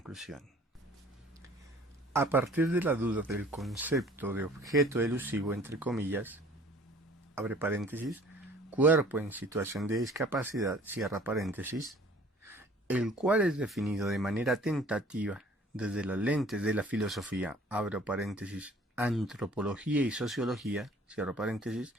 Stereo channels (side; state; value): both; normal; correlation 0.52